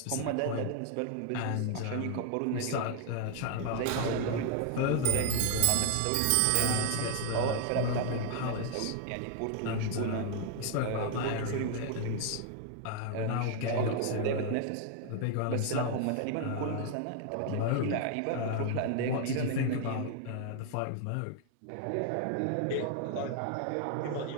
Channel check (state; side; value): different; both; correlation 0.00